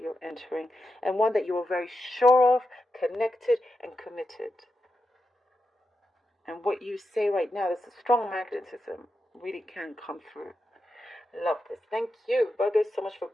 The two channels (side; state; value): both; normal; correlation 0.87